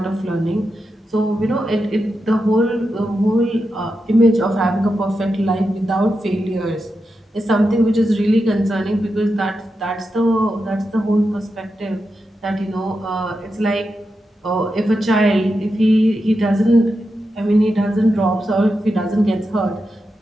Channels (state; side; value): normal; both; correlation 0.88